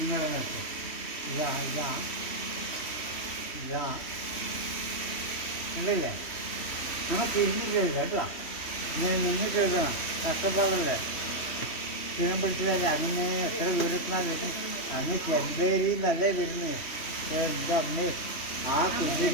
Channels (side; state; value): right; late; 3.1 ms